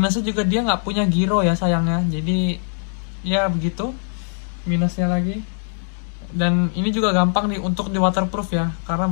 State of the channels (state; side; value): silent; right; 63 dB below the other